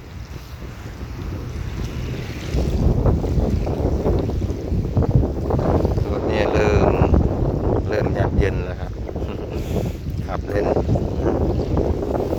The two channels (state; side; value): identical; both; correlation 1.00